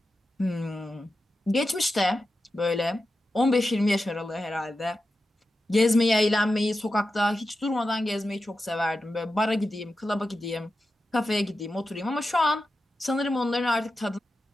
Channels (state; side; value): normal; both; correlation 0.91